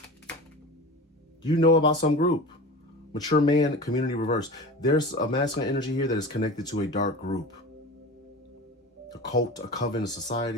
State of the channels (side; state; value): both; normal; correlation 0.33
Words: You know about some group. Mature man, community reverse. There's a masculine energy here that is connected to a dark group. A cult, a coven, a